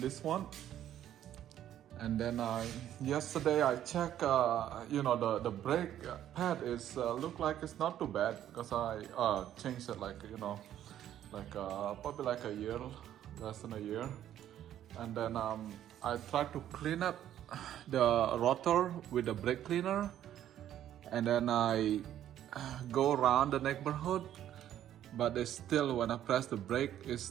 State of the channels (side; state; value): left; quieter; 11.4 dB